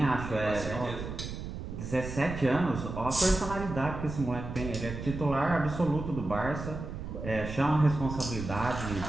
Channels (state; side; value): noise; right; rumble, 7 dB below the sound